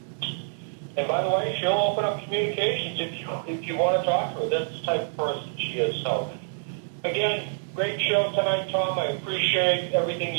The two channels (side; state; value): left; silent; digital silence